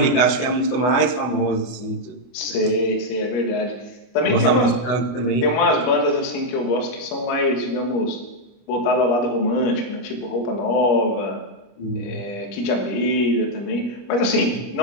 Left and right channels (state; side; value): late; right; 24 ms